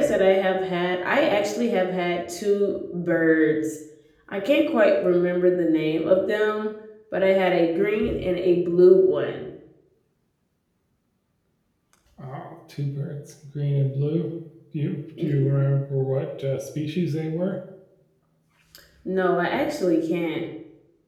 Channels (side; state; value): both; identical; correlation 1.00